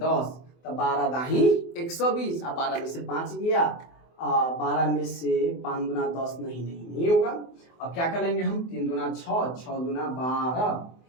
तो 12 दाही 120। अब 12 में से 5 गया, 12 में से 5 दूना 10 नहीं होगा। अब क्या कर लेंगे हम? 3 दूना 6, 6 दूना 12,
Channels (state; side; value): late; right; 24 ms